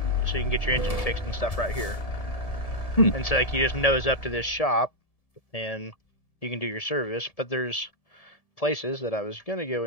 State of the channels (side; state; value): right; late; 1.7 ms